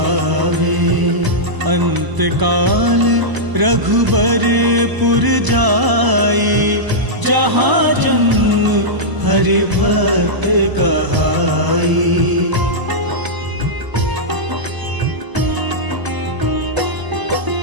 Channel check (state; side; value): late; left; 1.0 ms